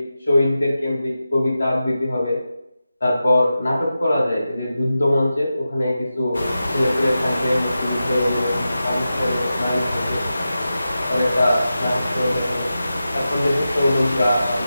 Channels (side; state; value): both; inverted; correlation -0.92